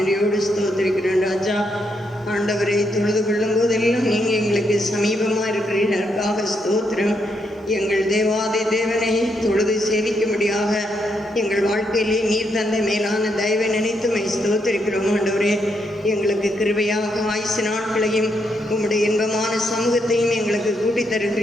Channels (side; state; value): both; normal; correlation 0.78